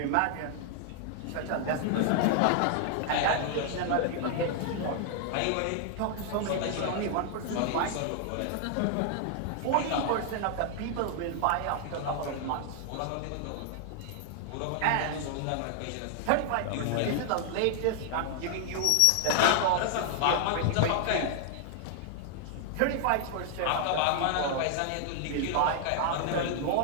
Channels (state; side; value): different; both; correlation 0.00